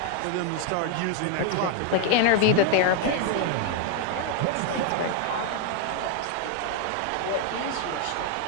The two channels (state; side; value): different; both; correlation 0.00